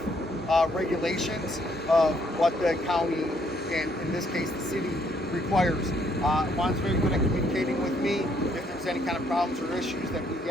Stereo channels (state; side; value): normal; both; correlation 0.69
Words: regulations of what the county and in this case the city requires. Juan's very good at communicating with me if there's any kind of problems or issues that we